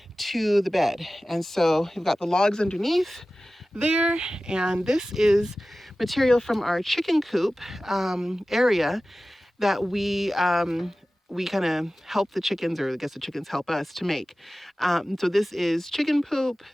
to the bed. And so we've got the logs underneath there, and this is material from our chicken coop area that we kind of help the chickens, or I guess the chickens help us to make. So this is chicken poop,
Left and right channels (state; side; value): normal; both; correlation 0.96